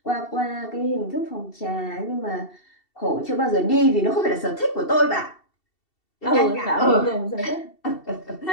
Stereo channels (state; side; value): late; right; 2.7 ms